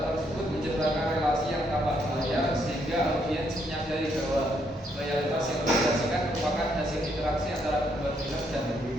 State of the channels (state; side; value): normal; both; correlation 0.74